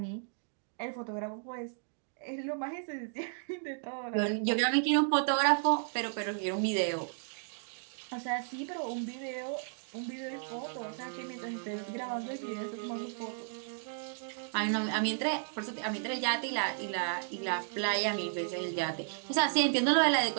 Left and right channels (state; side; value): silent; left; digital silence